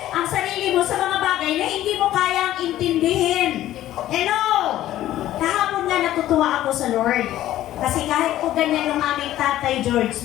ang sarili mo sa mga bagay na hindi mo kayang intindihin. Hello! Kahapon nga natutuwa ako sa Lord. Kasi kahit po ganyan yung aming tatay George,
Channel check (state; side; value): quieter; right; 13.6 dB